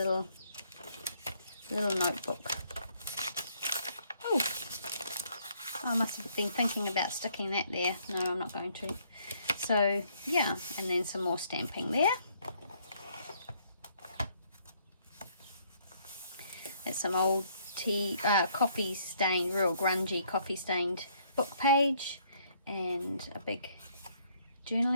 notebook. Oh, I must have been thinking about sticking that there. No, I'm not going to. So yeah, and then some more stamping there. That's some old coffee stained, real grungy coffee stained book page, and a big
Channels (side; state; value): both; inverted; correlation -0.67